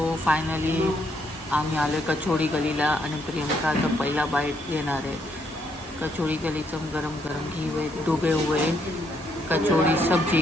फायनली आम्ही आलो कचोडी गलीला आणि प्रियंका आता पहिला बाईट घेणार आहे. कचोड़ी गलीचं गरम गरम घी हुए डूबे हुए कचोड़ी सब्जी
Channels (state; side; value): normal; both; correlation 0.73